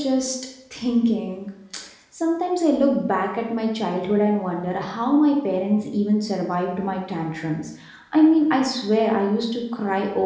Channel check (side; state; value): both; identical; correlation 1.00